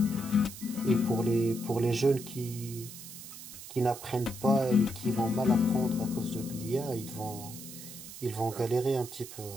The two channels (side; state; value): right; noise; hiss, 13 dB below the sound